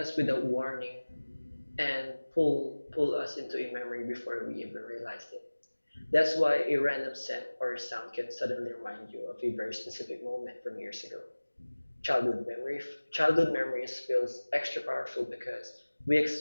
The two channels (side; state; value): both; inverted; correlation -1.00